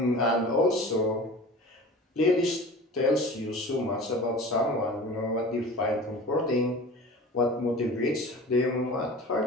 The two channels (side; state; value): both; normal; correlation 0.38